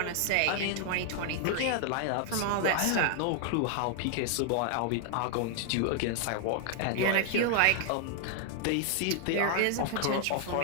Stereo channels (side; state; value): both; different; correlation 0.00